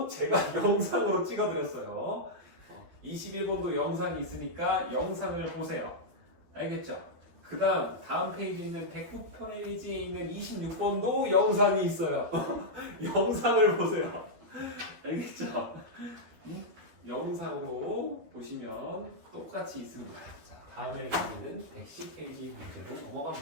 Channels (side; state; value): left; late; 12 ms